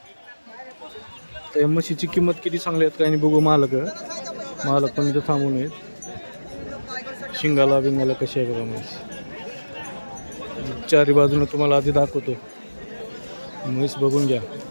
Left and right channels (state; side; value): inverted; both; correlation -1.00